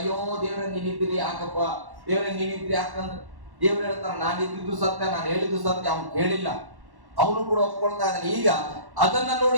ದೇವ್ರೆ ನೀನಿದ್ದೀರಿ ಯಾಕಪ್ಪ, ದೇವ್ರೆ ನೀನಿದ್ರಿ ಯಾಕಂದ್ರೆ ದೇವ್ರು ಹೇಳ್ತಾರ ನಾನು ಇದ್ದಿದ್ದು ಸತ್ಯ, ನಾನು ಹೇಳಿದ್ದು ಸತ್ಯ, ಅವ್ನು ಕೇಳಿಲ್ಲ, ಅವನು ಕೂಡ ಒಪ್ಕೊಳ್ತಾ ಇದ್ದಾನೆ. ಈಗ ಅದನ್ನ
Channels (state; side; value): late; left; 1.1 ms